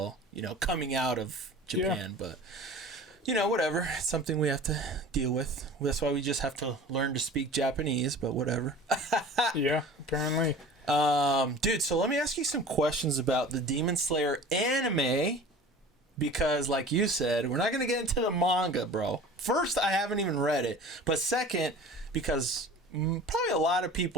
you know, coming out of Japan. But you know, whatever. It's something we have to deal with. That's why we just have to learn to speak Japanese, but whatever. Yeah, apparently. Dude, so let me ask you some questions about the Demon Slayer anime, because like you said, we're not going to get into the manga, bro. First, I haven't even read it, but second, because probably a lot of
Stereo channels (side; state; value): both; normal; correlation 0.41